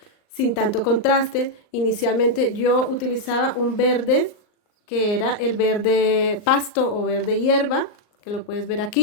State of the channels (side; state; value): right; late; 39 ms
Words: sin tanto contraste. Inicialmente yo utilizaba un verde, que era el verde pasto o verde hierba, que lo puedes ver